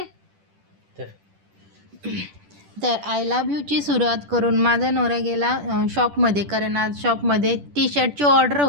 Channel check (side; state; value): left; late; 10 ms